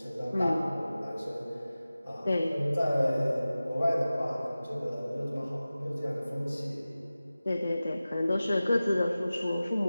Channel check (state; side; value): inverted; both; correlation -0.96